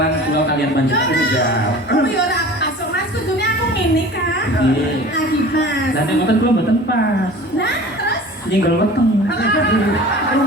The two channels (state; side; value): normal; both; correlation 0.41